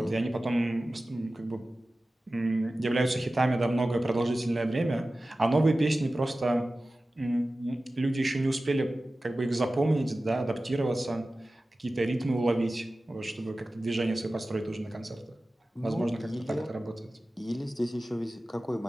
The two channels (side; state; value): both; normal; correlation 0.96